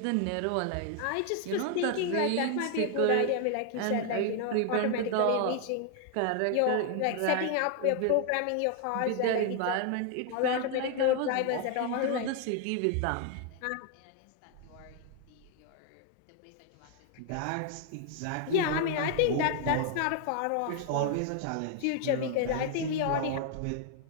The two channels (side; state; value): both; different; correlation 0.00